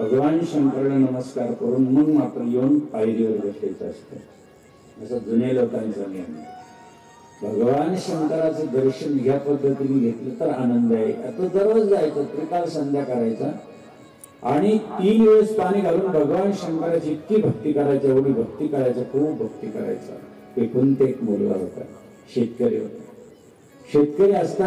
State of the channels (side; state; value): both; identical; correlation 1.00